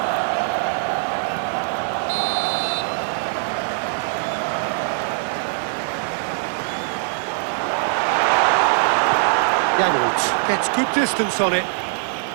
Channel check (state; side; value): silent; left; digital silence